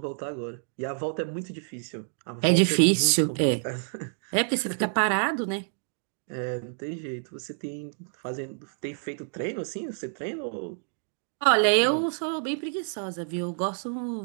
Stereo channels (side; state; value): left; silent; digital silence